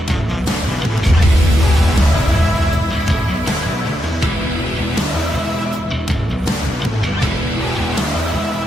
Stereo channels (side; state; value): both; normal; correlation 0.83